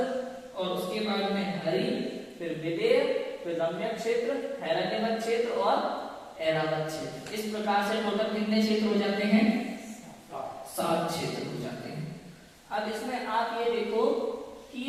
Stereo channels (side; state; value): both; identical; correlation 1.00